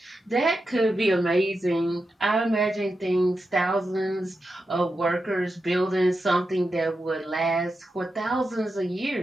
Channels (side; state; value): both; normal; correlation 0.89